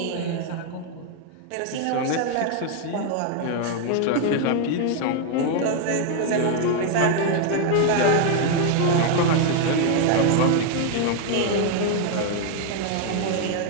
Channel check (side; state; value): both; different; correlation 0.01